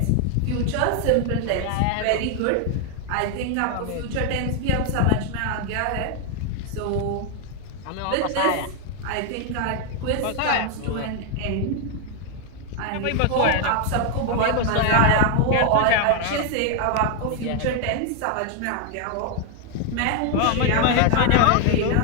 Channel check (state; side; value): different; both; correlation 0.01